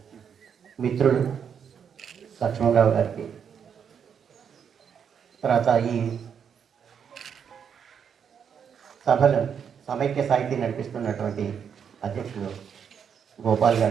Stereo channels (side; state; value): left; quieter; 7.5 dB